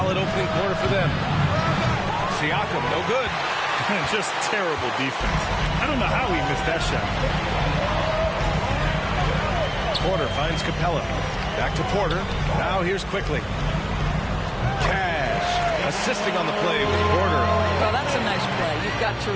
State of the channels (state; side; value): identical; both; correlation 1.00